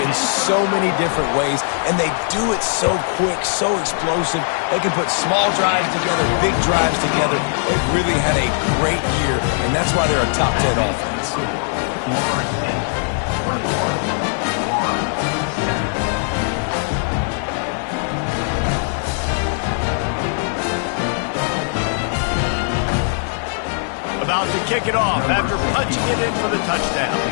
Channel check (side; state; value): right; silent; digital silence